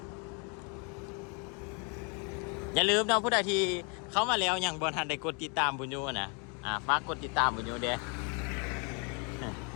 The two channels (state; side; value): quieter; right; 35.0 dB